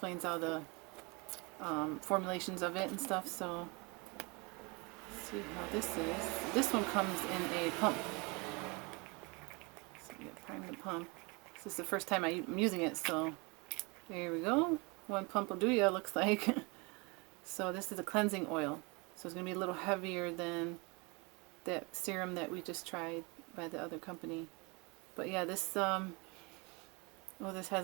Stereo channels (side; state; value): left; quieter; 28.6 dB